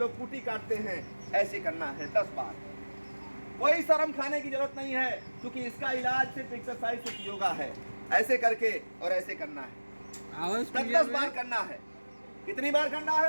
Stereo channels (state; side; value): inverted; both; correlation -1.00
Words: कुटी काटते हैं ऐसे करना है 10 बार। कोई शर्म खाने की जरूरत नहीं है, क्योंकि इसका इलाज सिर्फ एक्सरसाइज, सिर्फ योगा है। ऐसे करके और ऐसे करना है, 10 बार करना है। कितनी बार करना